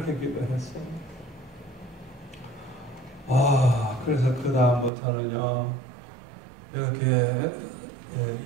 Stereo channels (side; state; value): left; drops out; at 4.9 s